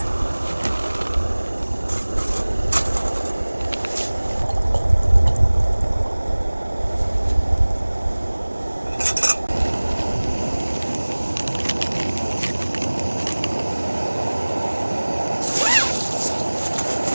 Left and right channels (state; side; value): inverted; both; correlation -1.00